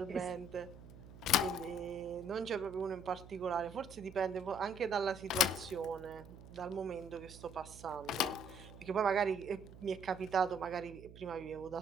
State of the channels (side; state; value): right; noise; hum, 16 dB below the sound